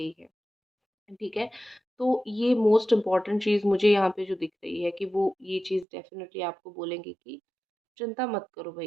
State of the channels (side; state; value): left; drops out; at 5.9 s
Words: है, ठीक है? तो ये मोस्ट इम्पोर्टेंट चीज़ मुझे यहाँ पे जो दिख रही है कि वो ये चीज़ डेफ़िनेटली आपको बोलेंगे कि चिंता मत करो